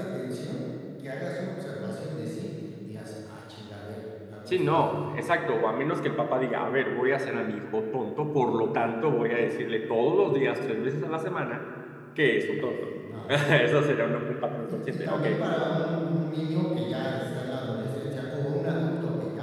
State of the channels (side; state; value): both; identical; correlation 1.00